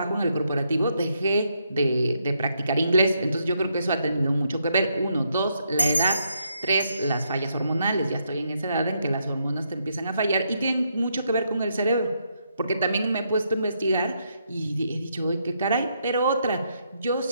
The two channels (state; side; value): inverted; both; correlation -0.77